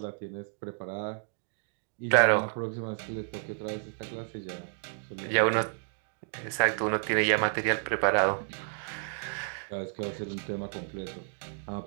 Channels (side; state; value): left; silent; digital silence